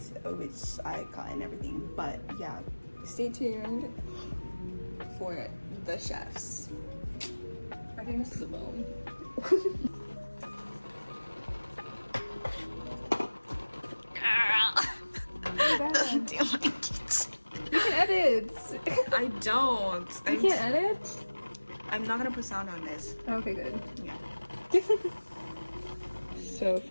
which I got and everything. But yeah, stay tuned for the chefs. I think this is a bone. Girl. Oh Do my kitchen. You can edit. I don't. You can't edit? I'm not gonna put sound on this. Okay, good. Yeah. So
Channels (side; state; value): both; inverted; correlation -1.00